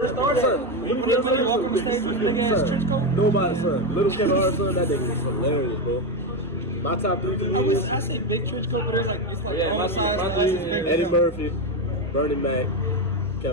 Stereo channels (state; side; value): normal; both; correlation 0.11